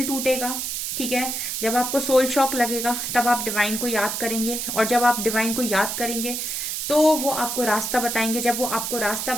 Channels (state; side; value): noise; right; hiss, 3 dB below the sound